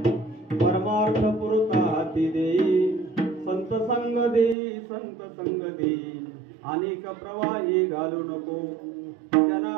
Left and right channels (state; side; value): drops out; left; at 4.5 s